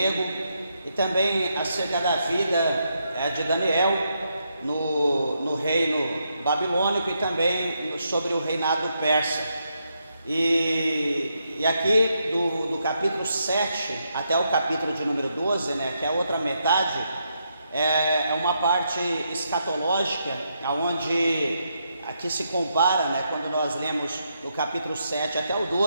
e também acerca da vida de Daniel no reino babilônico e também sobre o reinado persa. E aqui do capítulo 7 até o capítulo de número 12, né, que é a outra metade, é uma parte escatológica, onde aqui se compara, né, quando nós lemos no capítulo 7 até o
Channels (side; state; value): both; inverted; correlation -0.80